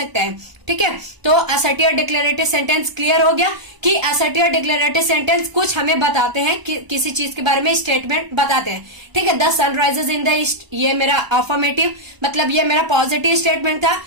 है। ठीक है, तो असर्टिव और डिक्लेरेटिव सेंटेंस क्लियर हो गया कि असर्टिव और डिक्लेरेटिव सेंटेंस कुछ हमें बताते हैं कि किसी चीज के बारे में स्टेटमेंट बताते हैं। ठीक है, the sun rises in the east, ये मेरा अफर्मेटिव, मतलब ये मेरा पॉजिटिव स्टेटमेंट था।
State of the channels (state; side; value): late; left; 1.0 ms